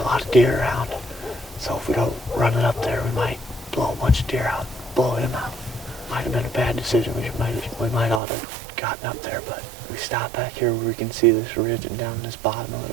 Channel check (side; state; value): left; drops out; at 8.2 s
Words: lot of deer around. So if we don't run it up there, we might blow a bunch of deer out, blow him out. Might have been a bad decision. We might ought to have gotten up there, but we stopped back here where we can see this ridge and down this bottom a